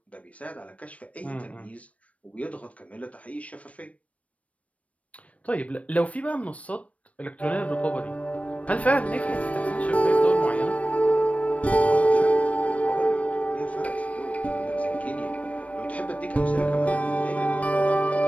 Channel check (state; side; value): late; right; 0.065 ms